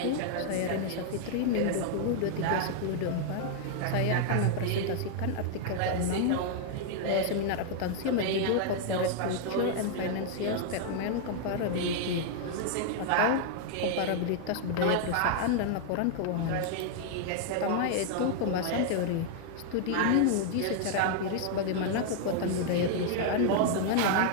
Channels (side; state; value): both; different; correlation 0.00